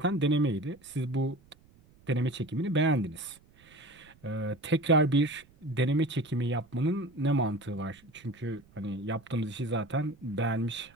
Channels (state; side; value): noise; right; rumble, 28 dB below the sound